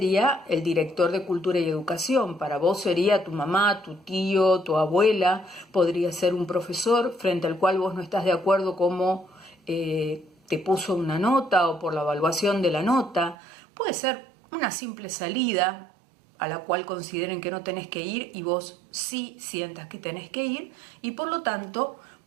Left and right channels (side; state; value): left; drops out; at 13.4 s